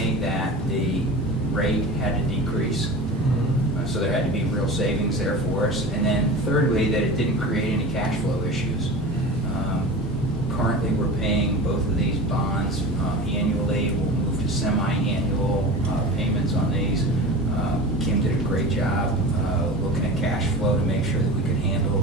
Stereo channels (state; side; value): normal; both; correlation 0.33